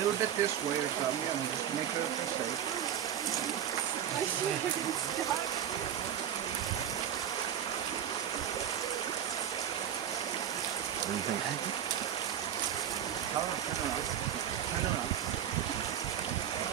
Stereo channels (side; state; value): left; quieter; 9.8 dB